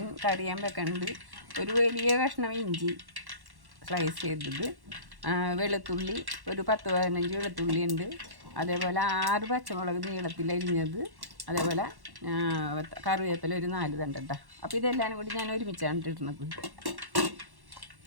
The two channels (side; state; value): left; late; 1.1 ms